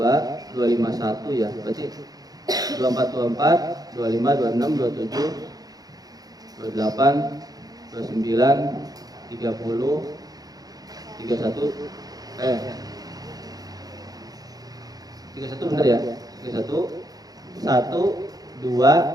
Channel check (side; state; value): left; late; 0.18 ms